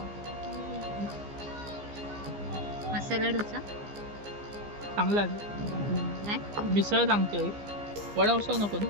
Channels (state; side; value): late; left; 15 ms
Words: मसाला डोसा, चांगला आहे. मिसळ सांगते, वडा उसळ नको ना.